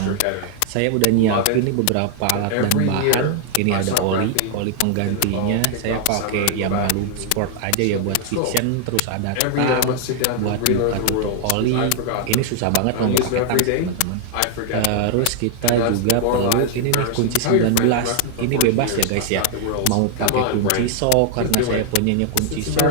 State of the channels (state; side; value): different; both; correlation 0.00